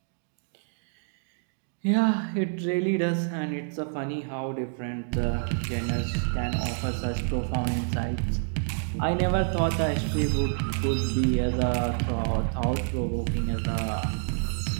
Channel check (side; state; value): left; silent; 59 dB below the other